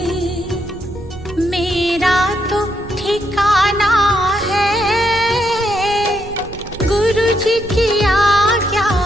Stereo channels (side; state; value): right; noise; rumble, 15 dB below the sound